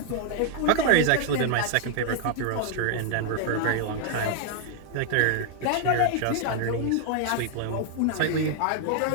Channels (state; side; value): different; both; correlation 0.00